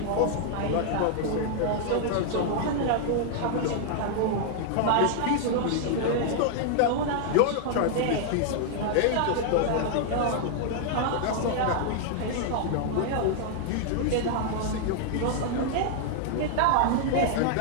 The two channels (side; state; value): both; different; correlation 0.00